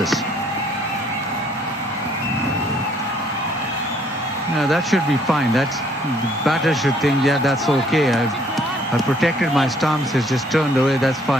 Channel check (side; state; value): both; normal; correlation 0.63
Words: No, that should be fine. The batter should think, yeah, that's okay. I've protected my stumps. It's just turned away. That's